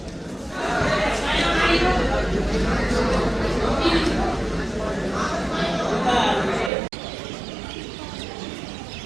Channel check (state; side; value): drops out; left; at 6.7 s